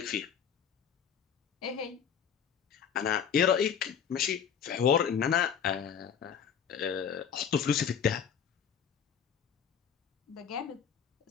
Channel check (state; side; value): quieter; right; 7.7 dB